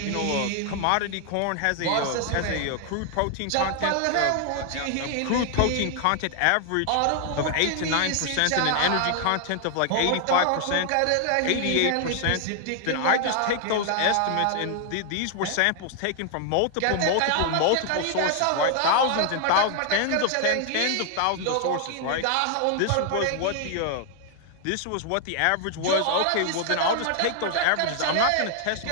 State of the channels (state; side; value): different; both; correlation 0.00